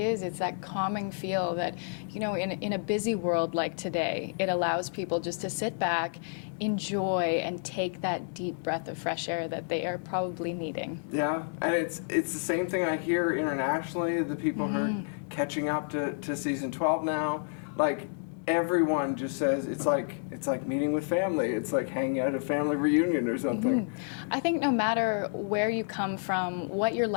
that calming feel that, in a busy world like today, it allows people just to sit back, enjoy, and take that deep breath of fresh air that they are probably needing. Yeah, and it's the same thing I hear internationally. The people who are catching up to season 12 now, like everyone just says it's like meeting with family. It's like hanging out at a family reunion or something. I think no matter where you come from, what your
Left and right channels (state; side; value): silent; right; 58 dB below the other